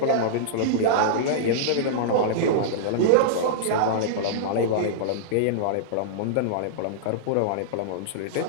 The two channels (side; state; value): both; different; correlation -0.02